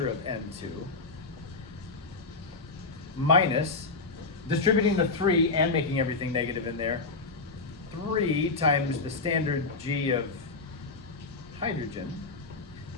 of N2 minus, distributing the 3 and making everything negative in there, 3 times the standard G of hydrogen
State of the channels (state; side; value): quieter; right; 3.8 dB